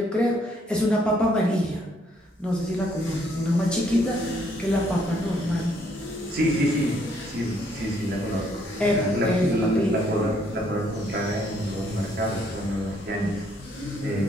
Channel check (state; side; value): normal; both; correlation 0.68